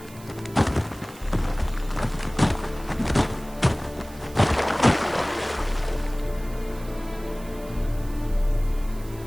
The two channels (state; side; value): noise; right; hiss, 21 dB below the sound